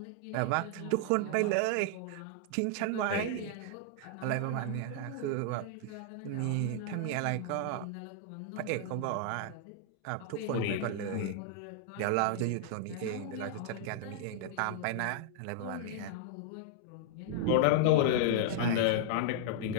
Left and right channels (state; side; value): different; both; correlation -0.01